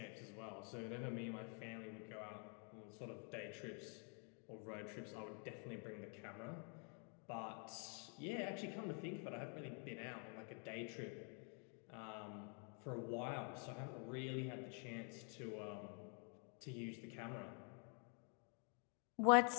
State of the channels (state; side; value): quieter; right; 39.9 dB